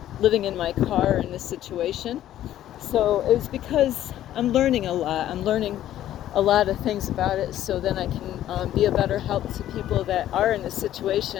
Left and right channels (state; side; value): quieter; right; 12.5 dB